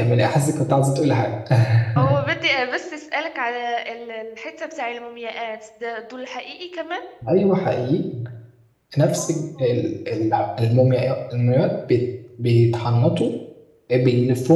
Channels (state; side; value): identical; both; correlation 1.00